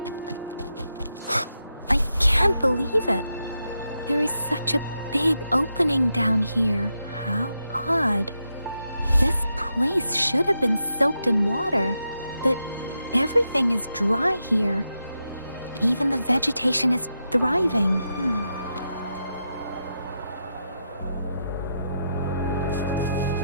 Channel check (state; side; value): inverted; both; correlation -0.85